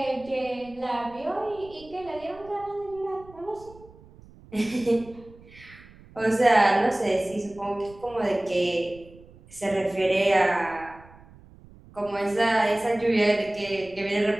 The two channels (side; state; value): right; noise; rumble, 22 dB below the sound